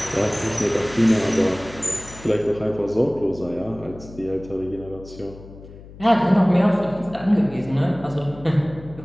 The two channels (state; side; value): noise; left; hum, 18 dB below the sound